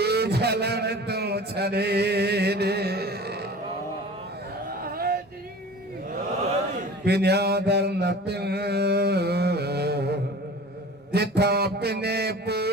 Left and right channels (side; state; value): both; normal; correlation 0.40